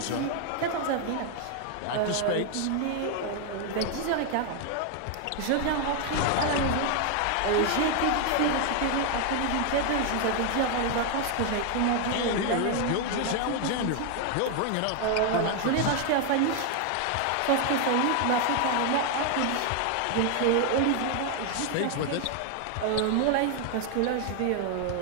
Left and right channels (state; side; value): different; both; correlation 0.00